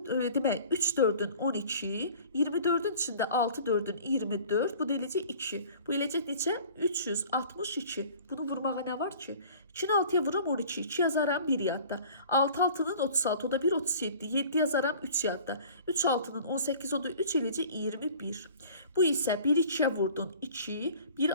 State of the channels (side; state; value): both; inverted; correlation -0.47